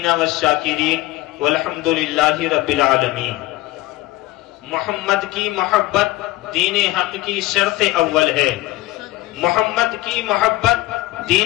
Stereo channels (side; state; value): right; quieter; 18.0 dB